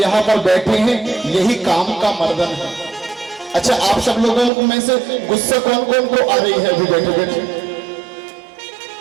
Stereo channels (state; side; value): drops out; left; at 4.5 s